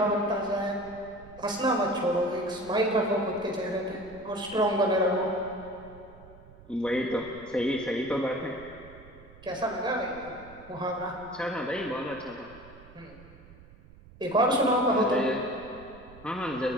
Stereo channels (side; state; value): right; noise; rumble, 21 dB below the sound